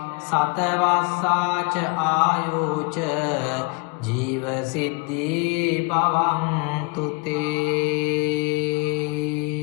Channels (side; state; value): right; quieter; 30.1 dB